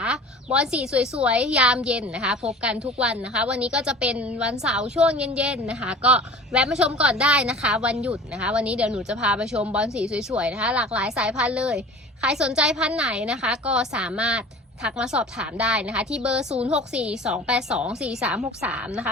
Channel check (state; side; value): normal; both; correlation 0.41